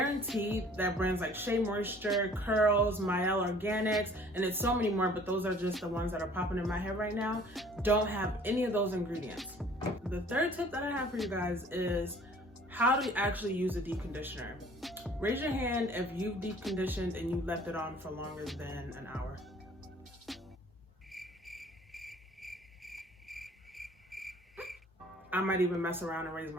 that brands like Shea Moisture, Curls, Mielle Organics, and it's so many more, but those are just the ones that are popping in my head right now, don't have any of those ingredients. The third tip that I have for you guys is how to actually use a deep conditioner. Raise your hand if you've deep conditioned and you left it on for longer than an hour. I might even mess around and raise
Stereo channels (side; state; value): both; normal; correlation 0.53